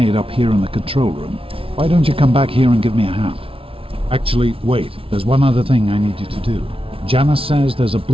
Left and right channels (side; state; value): left; late; 0.26 ms